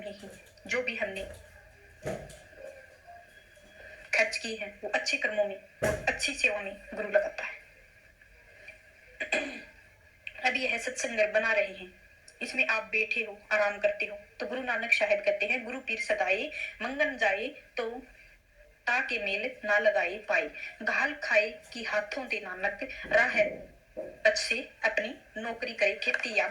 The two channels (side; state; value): both; identical; correlation 1.00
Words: ही जो भी हमने खर्च किए हैं वो अच्छे कर्मों में और अच्छी सेवा में गुरु लगाता है। अब यह सत्संग बना रहे हैं, इसमें आप बैठे हो, आराम करते हो, तो गुरु नानक साहिब कहते हैं गुरु पीर सदाए मंगन जाए तो ताके मेल ना लगाए पाए। घाल खाए कि हाथों दे नानक राह अच्छे अपनी नौकरी करे, खेती या